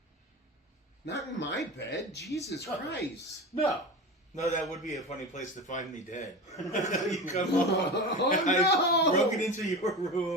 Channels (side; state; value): both; normal; correlation 0.27